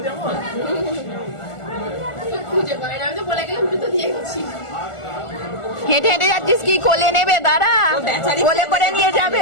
যাবো খুঁজে পাই না, আমি তো বলে গেলাম জুতো দিয়ে গেছি। হেঁটে হেঁটে যাচ্ছিস কি? কোলে নেবে দাঁড়া, কোলে করে নিয়ে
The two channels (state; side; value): late; right; 1.4 ms